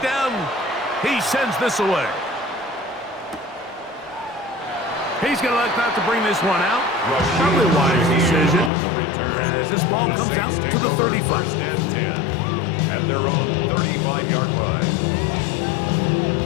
He sends this away. He's going to elect not to bring this one out. Probably a wise decision. As this ball comes out to the 35. First and 10 at their own 35-yard line.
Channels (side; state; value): right; drops out; at 8.7 s